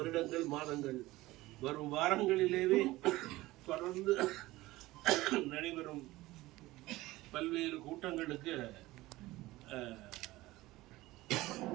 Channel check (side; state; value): left; quieter; 18.5 dB